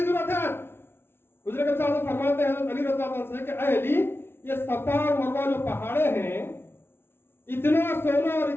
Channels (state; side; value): late; right; 0.11 ms